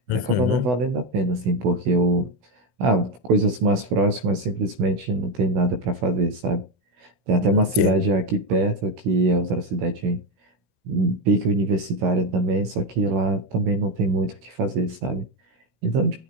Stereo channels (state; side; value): late; left; 16 ms